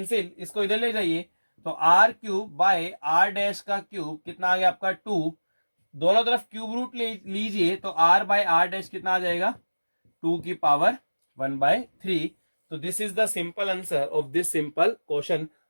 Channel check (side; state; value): both; inverted; correlation -1.00